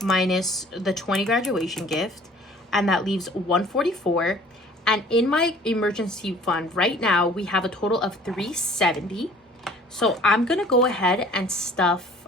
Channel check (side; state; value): both; normal; correlation 0.51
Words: minus the 20 graduation gift, and that leaves 144. And in my emergency fund right now, we have a total of 370. So I'm going to go ahead and stuff,